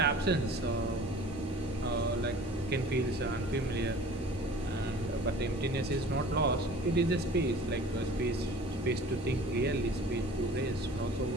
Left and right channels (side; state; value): both; normal; correlation 0.45